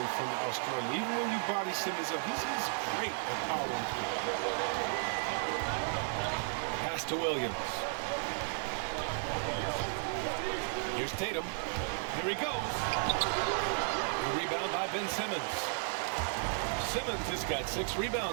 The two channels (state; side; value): silent; left; 55 dB below the other